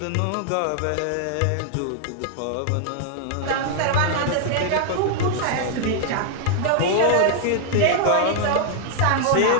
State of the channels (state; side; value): different; both; correlation 0.00